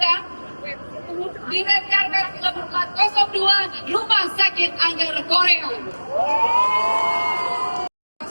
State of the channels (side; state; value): both; inverted; correlation -1.00